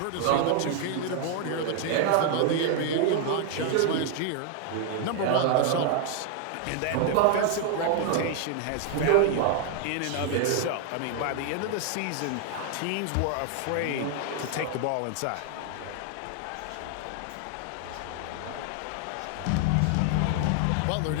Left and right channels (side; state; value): both; different; correlation 0.00